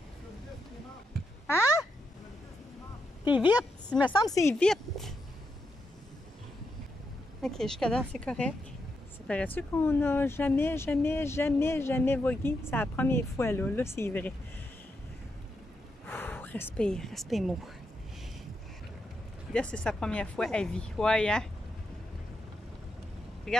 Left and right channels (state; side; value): normal; both; correlation 0.83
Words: Hein? T'es vite? Il me semble que c'est vite. OK, jusqu'à là, c'est correct. Ça paraît-tu qu'on n'a jamais vogué? C'est la première fois, là. Là, c'est vrai. Ouh, respire, respire-moi. Là, c'est sa première fois à vie. Ouais, hein?